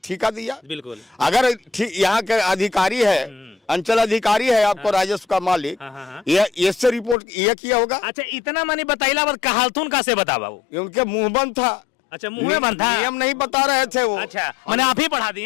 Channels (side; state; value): right; drops out; at 7.2 s